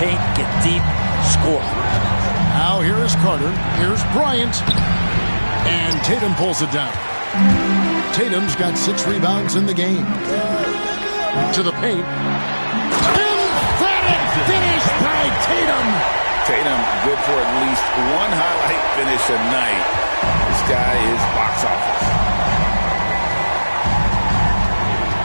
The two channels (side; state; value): both; inverted; correlation -1.00